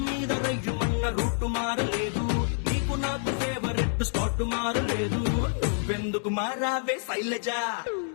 మీద రయ్యుమన్న రూటు మారలేదు, నీకు నాకు ఫేవరెట్ స్పాట్ మారలేదు. నువ్వెందుకు మారావే శైలజ?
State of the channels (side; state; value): right; silent; digital silence